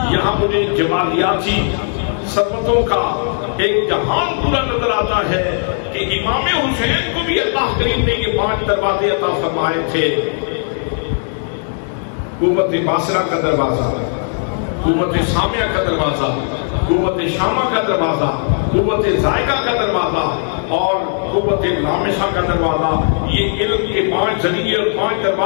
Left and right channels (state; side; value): silent; right; 66 dB below the other